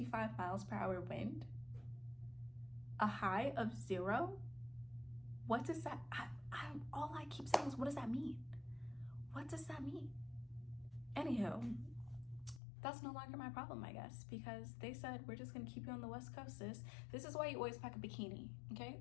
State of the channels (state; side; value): drops out; right; at 12.6 s